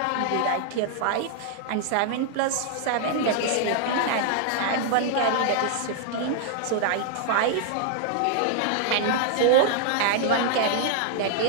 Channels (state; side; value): different; both; correlation -0.01